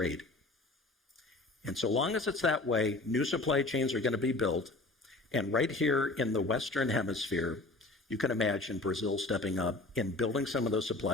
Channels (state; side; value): quieter; right; 3.1 dB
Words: And so long as it's that way, new supply chains are going to be built. And right here in the Western Hemisphere, you can imagine Brazil stepping up and building some of those